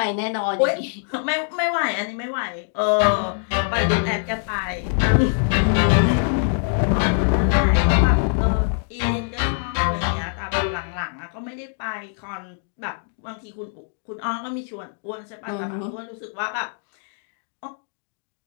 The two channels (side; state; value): right; silent; digital silence